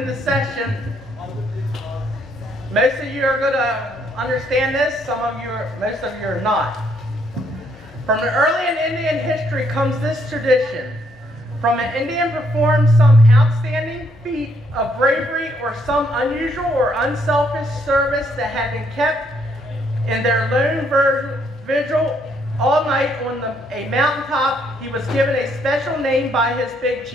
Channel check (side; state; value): both; normal; correlation 0.71